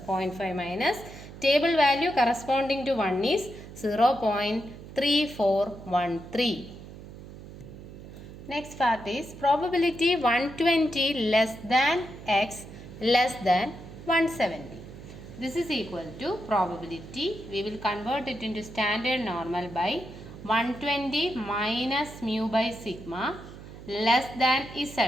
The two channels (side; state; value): right; noise; hum, 15 dB below the sound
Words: 0.5 minus table value corresponding to 1 is 0.3413. Next part is probability 120 less than x less than 170. This is equal to probability. We will convert it into standard normal by 120 minus mu by sigma less than